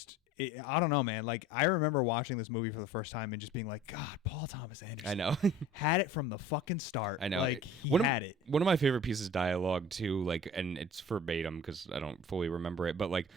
I don't know, man. Like I remember watching this movie for the first time and just being like, God, Paul Thomas Anderson. I know. had it from the fucking start. I know. Like he had it. One of my favorite pieces of dialogue too, like, and it's verbatim because I don't fully remember it, but like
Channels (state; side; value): normal; both; correlation 0.44